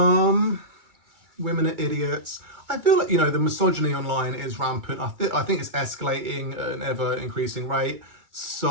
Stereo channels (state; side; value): late; left; 2.3 ms